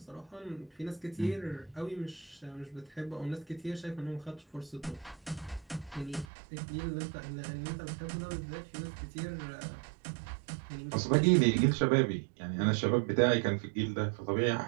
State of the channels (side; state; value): left; drops out; at 6.2 s